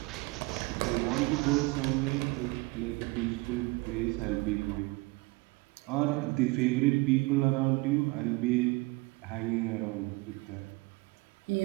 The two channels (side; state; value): left; quieter; 24.1 dB